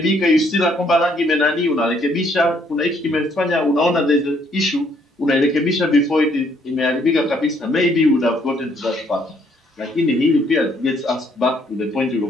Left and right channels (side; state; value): both; normal; correlation 0.67